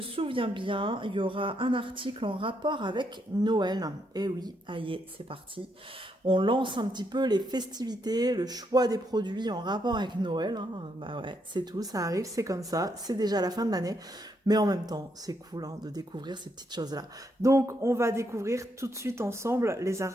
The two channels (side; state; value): both; normal; correlation 0.77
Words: bien, il y aura un article en rapport avec Noël. Et oui, aïe, c'est parti. On lance un petit peu les festivités, le choix des produits en rapport avec Noël. Hein. Bah ouais, c'est tout, ça arrive, c'est comme ça, c'est déjà la fin de l'année. Mais en même temps, c'est cool de découvrir ces petites choses-là. Donc, on va découvrir tout de suite ensemble les